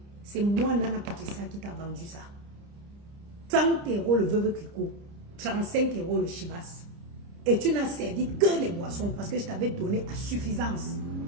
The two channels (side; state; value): left; late; 30 ms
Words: C'est moi, Nana Patricia, qui t'a vendu ça. 30 € le Veuve Clicquot, 35 € le Chivas. Et tu n'as servi que les boissons parce que je t'avais donné à suffisance.